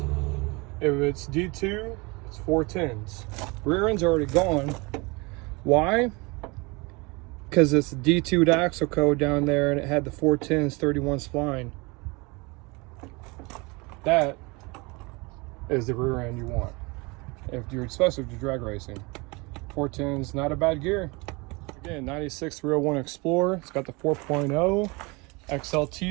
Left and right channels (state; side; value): quieter; left; 26.8 dB